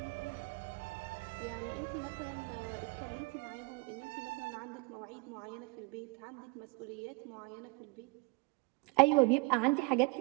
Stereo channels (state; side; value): quieter; left; 27.9 dB